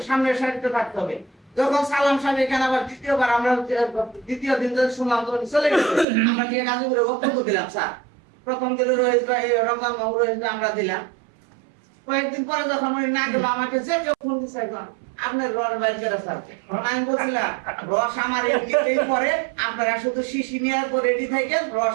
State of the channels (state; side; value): drops out; left; at 6.1 s